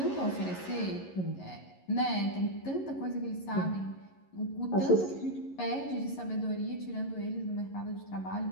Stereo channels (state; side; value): late; right; 11 ms